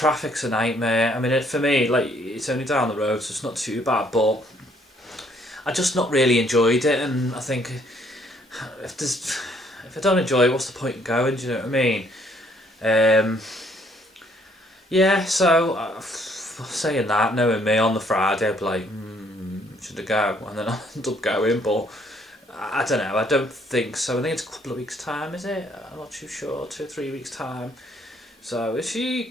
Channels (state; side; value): normal; both; correlation 0.66